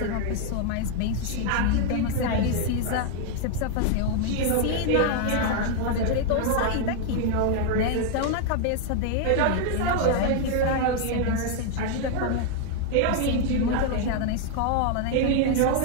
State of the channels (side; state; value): both; different; correlation 0.00